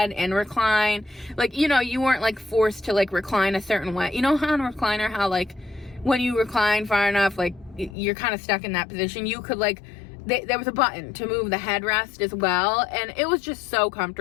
and recline. Like, you know, you weren't like forced to like recline a certain way. You know how on a recliner, how like when you recline far enough, like you're kind of stuck in that position. You could like, there was a button to move the headrest as well, and it was just so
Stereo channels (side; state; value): right; drops out; at 8.0 s